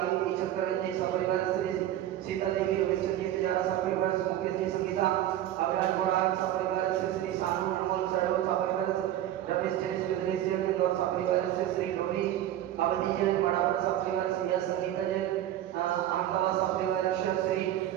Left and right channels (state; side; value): quieter; left; 12.5 dB